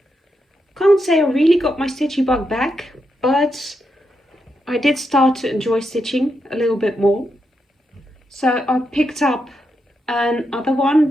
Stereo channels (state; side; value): normal; both; correlation 0.84